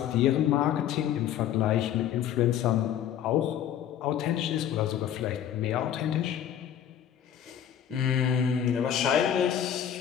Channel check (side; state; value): right; quieter; 10.0 dB